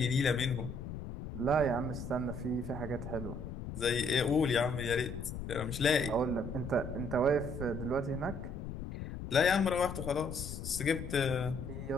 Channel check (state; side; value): noise; left; rumble, 8 dB below the sound